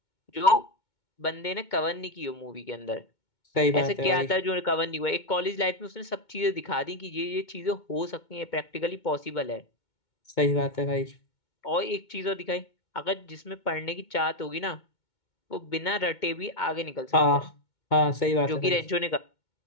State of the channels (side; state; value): right; late; 2.2 ms